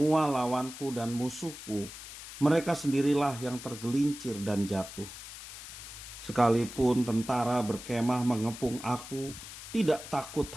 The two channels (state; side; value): noise; left; hiss, 12 dB below the sound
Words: lawanku dan musuhku, mereka sendirilah yang tergelincir dan jatuh. Sekalipun tentara berkemah mengepung aku, tidak takut